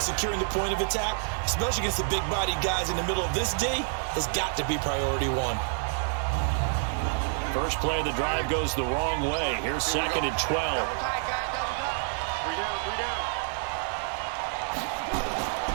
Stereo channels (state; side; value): silent; left; 59 dB below the other